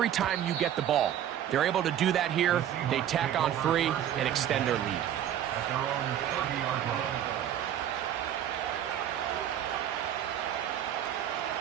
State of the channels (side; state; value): left; quieter; 10.5 dB